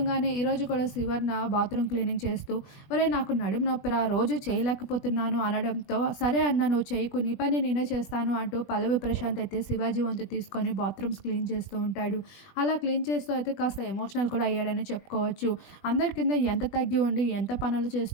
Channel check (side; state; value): right; late; 20 ms